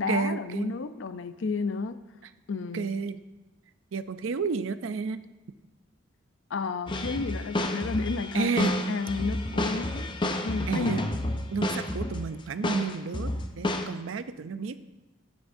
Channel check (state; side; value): normal; both; correlation 0.51